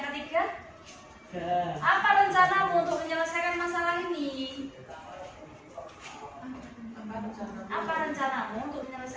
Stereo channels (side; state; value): both; identical; correlation 1.00